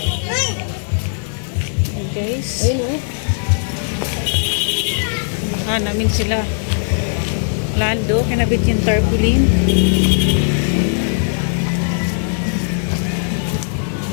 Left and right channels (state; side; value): silent; right; digital silence